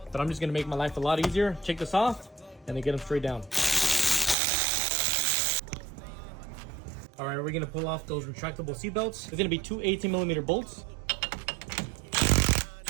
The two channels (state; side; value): drops out; left; at 4.4 s